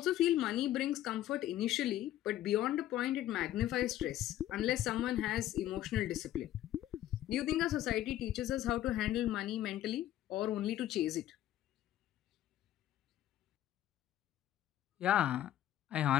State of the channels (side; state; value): right; quieter; 13.0 dB